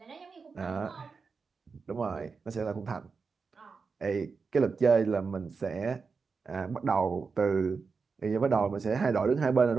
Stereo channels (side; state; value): left; quieter; 5.0 dB